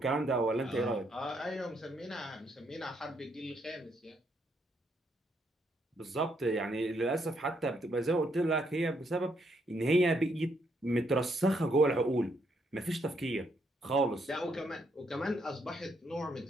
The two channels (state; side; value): normal; both; correlation 0.74